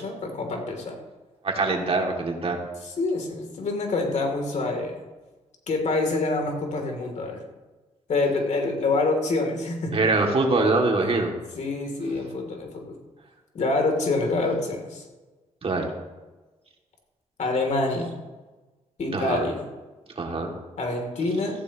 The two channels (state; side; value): normal; both; correlation 0.48